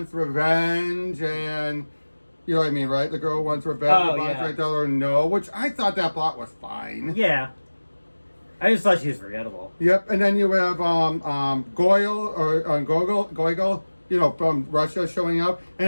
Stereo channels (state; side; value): inverted; both; correlation -1.00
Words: revenge, and you know what I mean, right? The girl who wants revenge. Oh, Bond's trying to tell her no, which I thought that plot was fine. Yeah. I just thought she was forgettable. Yep, and then you have Gogol, you know, from Russia showing up, and